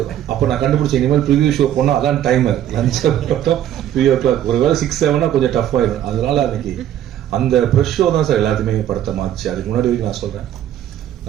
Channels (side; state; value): left; quieter; 11.4 dB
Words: அப்போ நான் கண்டுபிடிச்ச இனிமேல் ப்ரிவியூ ஷோ போனால் அதான் டைமர் லஞ்ச் 3:00 ஒரு வேலை 6-7 கொஞ்சம் டஃப் ஆயிடும். அதனால அன்னைக்கு அந்த ப்ரெஷ் ஷோ தான் சார் எல்லாத்தையுமே படத்தை மாறிச்சு. அதுக்கு முன்னாடி வரைக்கும் நான் சொல்றேன்,